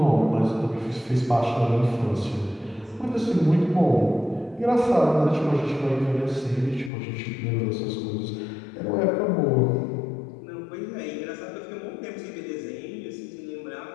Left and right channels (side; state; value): right; drops out; at 6.9 s